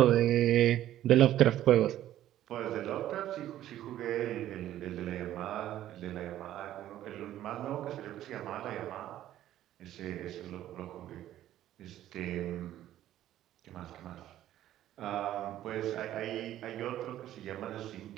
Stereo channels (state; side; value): quieter; left; 12.8 dB